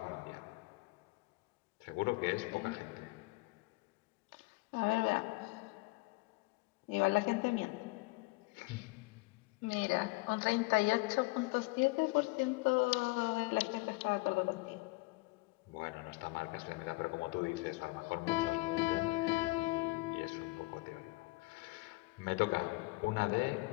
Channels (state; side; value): quieter; right; 24.3 dB